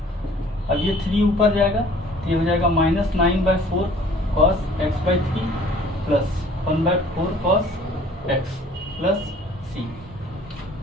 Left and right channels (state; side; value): normal; both; correlation 0.53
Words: अब ये 3 ऊपर जाएगा तो ये हो जाएगा minus 9/4 cos x/3 plus 1/4 cos x plus c.